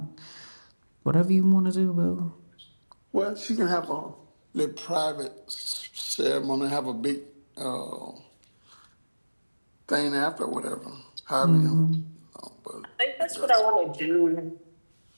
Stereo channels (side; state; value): both; inverted; correlation -1.00